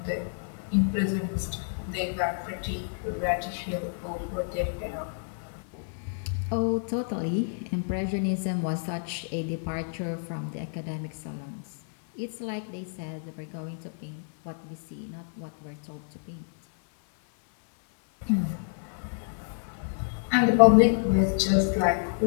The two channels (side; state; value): right; silent; 59 dB below the other